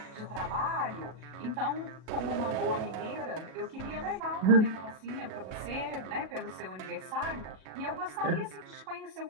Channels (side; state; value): left; late; 37 ms